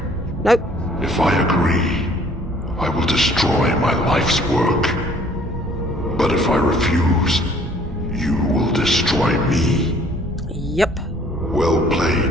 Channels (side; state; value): both; normal; correlation 0.57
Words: Nope. If I agree, I will destroy my life's work. But if I refuse, you will destroy me. Yep. Well